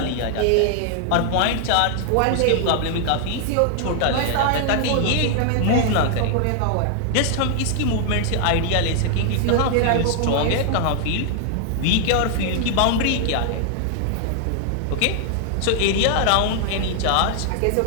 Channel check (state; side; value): different; both; correlation 0.00